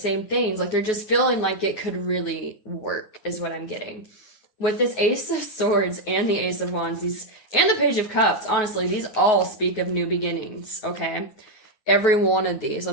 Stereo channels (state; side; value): late; right; 9.3 ms